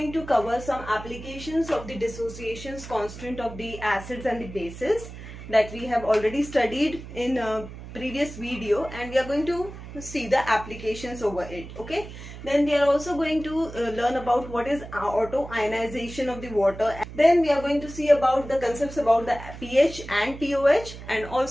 to cover some applications of the dissociations constant of the acids and the bases that we have already studied in a previous video, and we are going to see the applications over it. Okay, then we are also going to learn about what is auto ionization of the water. Then we are going to see about the concepts about the pH and POH, and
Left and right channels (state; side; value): noise; right; hum, 13 dB below the sound